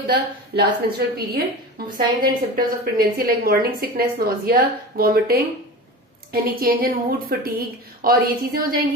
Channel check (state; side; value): normal; both; correlation 0.31